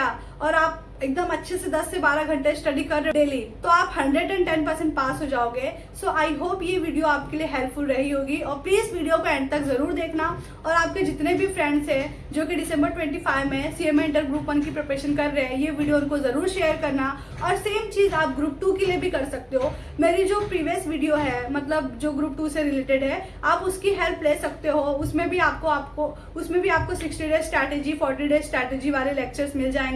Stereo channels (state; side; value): identical; both; correlation 1.00